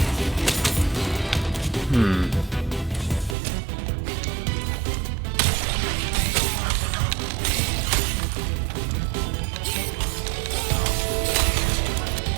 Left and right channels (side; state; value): left; drops out; at 3.4 s